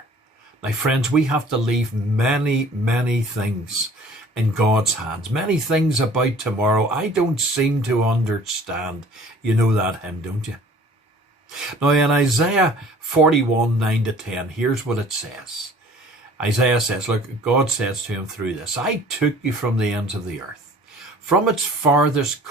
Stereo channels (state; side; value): normal; both; correlation 0.50